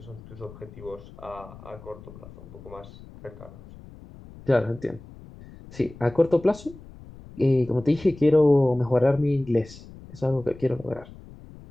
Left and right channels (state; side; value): noise; left; rumble, 18 dB below the sound